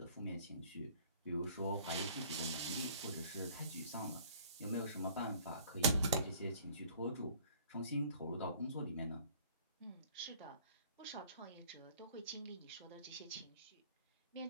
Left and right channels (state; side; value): inverted; both; correlation -0.53